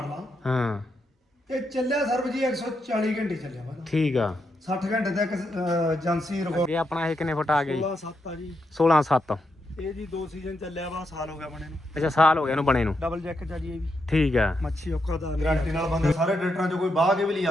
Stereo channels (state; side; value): normal; both; correlation 0.82